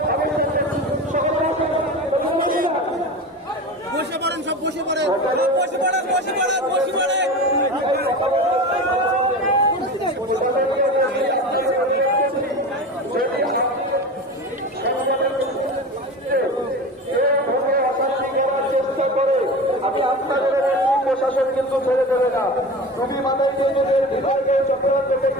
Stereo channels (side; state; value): both; normal; correlation 0.29